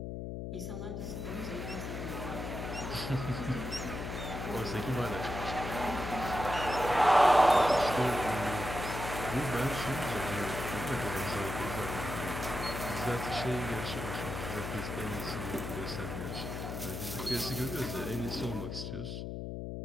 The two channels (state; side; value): noise; left; hum, 5 dB below the sound